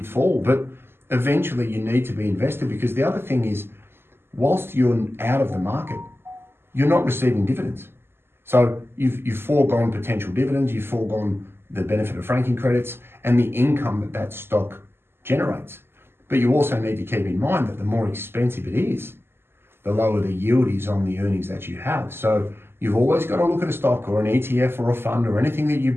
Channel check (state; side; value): late; left; 0.11 ms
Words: fall. But eventually you need to be invested, because the other thing is, whilst you're out of the market, you're not receiving dividends. So you've foregone potential dividends, you've foregone the benefit of franking credits and the income that stock generates. But you also need to keep in mind that the more expensive it is, the lower the yield is on the earnings that you have. So you've always got to look at a stock or an ETF or a fund or anything that you